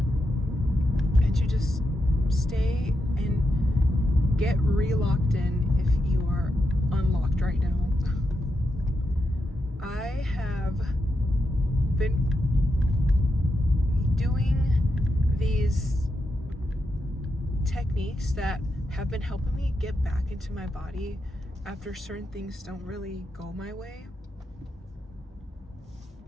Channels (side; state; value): both; normal; correlation 0.85